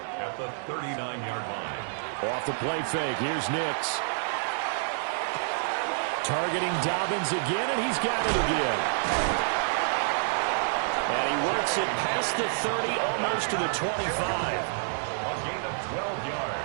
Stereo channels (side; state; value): left; silent; 59 dB below the other